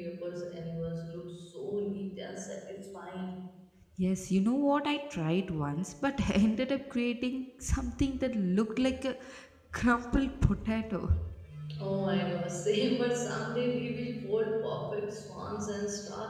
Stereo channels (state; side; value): identical; both; correlation 1.00